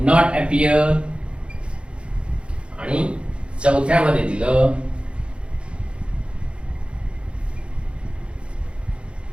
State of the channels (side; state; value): left; late; 0.057 ms